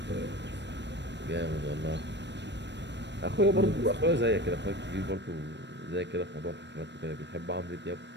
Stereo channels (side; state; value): left; late; 0.51 ms